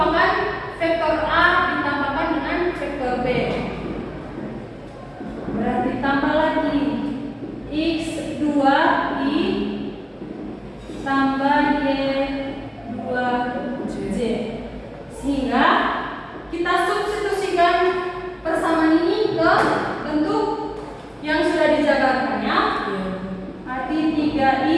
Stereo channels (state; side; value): identical; both; correlation 1.00